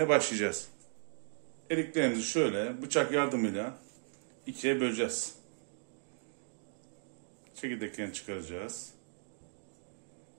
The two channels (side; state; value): left; silent; digital silence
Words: başlayacağız. Eriklerimizi şöyle bıçak yardımıyla ikiye böleceğiz. Çekirdeklerini çıkaracağız.